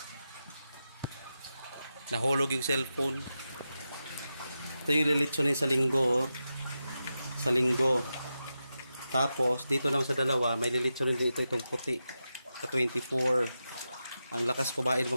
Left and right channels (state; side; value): inverted; both; correlation -0.90